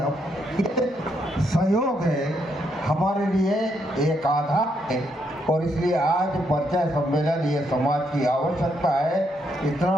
सहयोग है हमारे लिए एक आधार है। और इसलिए आज परिचय सम्मेलन ये समाज की आवश्यकता है।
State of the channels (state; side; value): normal; both; correlation 0.77